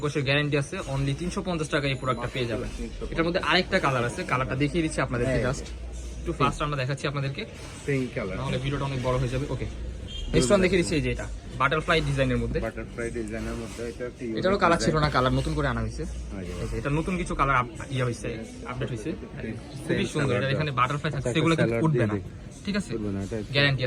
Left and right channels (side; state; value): both; identical; correlation 1.00